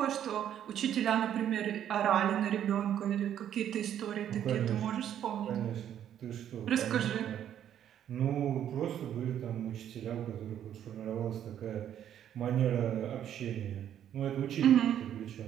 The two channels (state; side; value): quieter; left; 10.2 dB